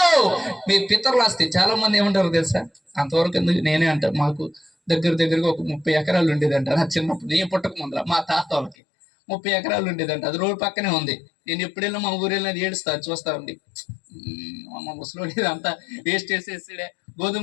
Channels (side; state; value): right; drops out; at 8.8 s